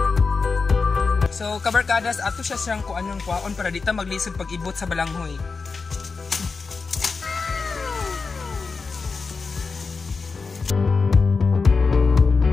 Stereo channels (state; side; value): quieter; right; 4.5 dB